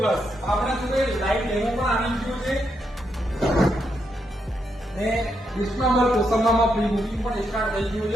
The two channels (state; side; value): normal; both; correlation 0.80